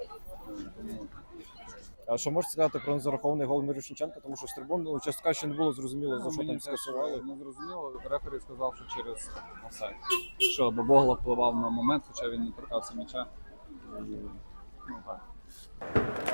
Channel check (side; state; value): both; inverted; correlation -1.00